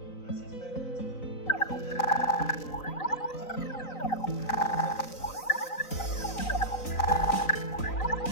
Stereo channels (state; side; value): late; right; 3.9 ms